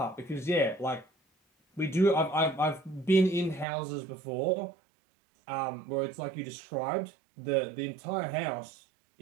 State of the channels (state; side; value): drops out; left; at 3.7 s